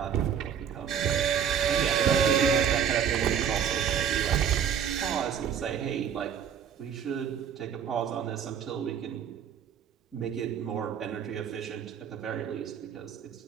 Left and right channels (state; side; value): quieter; left; 8.2 dB